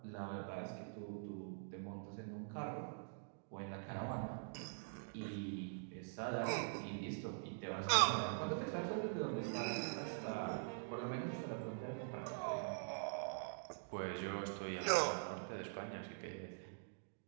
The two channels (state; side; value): silent; left; digital silence